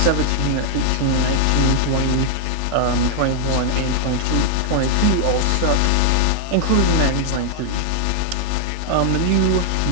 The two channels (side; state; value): both; different; correlation 0.00